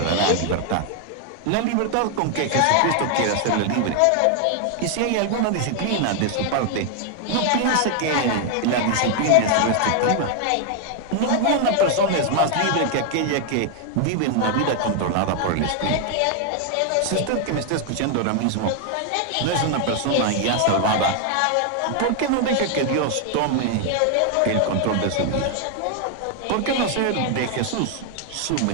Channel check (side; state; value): both; different; correlation 0.00